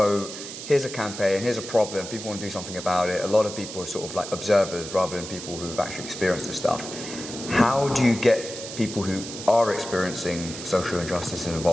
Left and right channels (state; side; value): noise; right; hiss, 10 dB below the sound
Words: here's a campaign, here's a problem, people want to do something about it. A lot of people are sort of like observers rather than people who've actually experienced this stuff. How do you get people who are experiencing social injustice